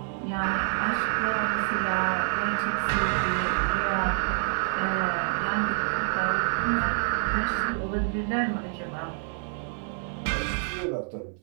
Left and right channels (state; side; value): silent; left; 60 dB below the other